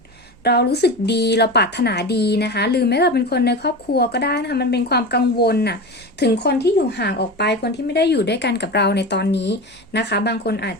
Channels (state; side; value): noise; right; hum, 30 dB below the sound